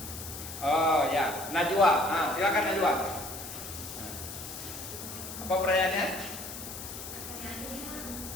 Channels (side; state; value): left; noise; hiss, 9 dB below the sound